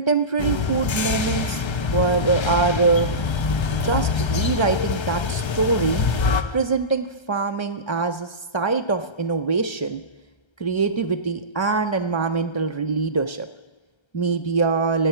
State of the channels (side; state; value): right; late; 1.3 ms